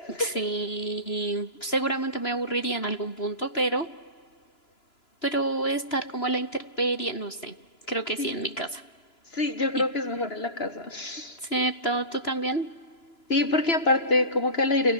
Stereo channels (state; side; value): late; right; 2.9 ms